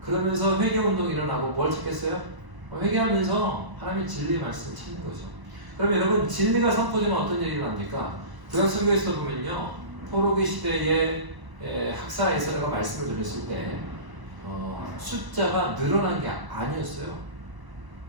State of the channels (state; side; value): late; left; 1.0 ms